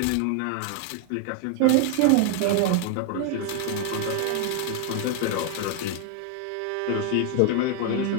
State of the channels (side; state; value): both; different; correlation 0.00